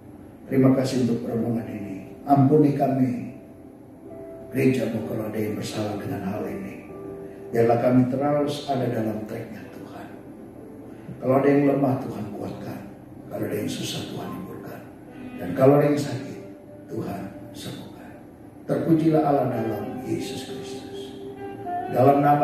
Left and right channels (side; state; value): both; identical; correlation 1.00